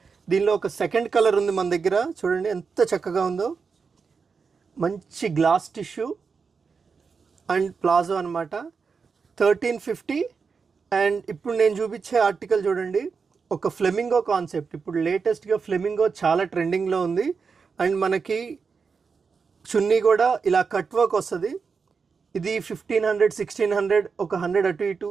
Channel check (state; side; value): quieter; left; 5.3 dB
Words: దీనిలో ఒక సెకండ్ కలర్ ఉంది మన దగ్గర. చూడండి ఎంత చక్కగా ఉందో. మంచి గ్లాస్ టిష్యూ అండ్ ప్లాజో అనమాట. 1350. అండ్ ఇప్పుడు నేను చూపించే ఆర్టికల్ చూడండి, ఒక ఫ్లెమింగో కాన్సెప్ట్. ఇప్పుడు లేటెస్ట్గా ఫ్లెమింగో చాలా ట్రెండింగ్లో ఉంది. అండ్ మనకి చున్నీ కూడా ఇలా కట్ వర్క్ వస్తుంది. ఇది 1500, 1600, ఒక 100 అటు ఇటు